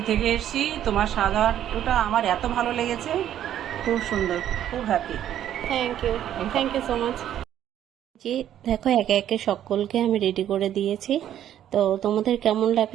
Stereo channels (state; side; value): quieter; left; 11.0 dB